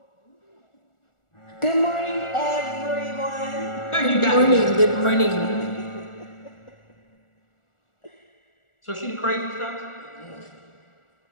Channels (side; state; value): right; late; 1.4 ms